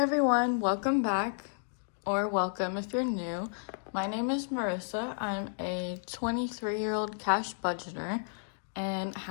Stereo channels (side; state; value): right; silent; digital silence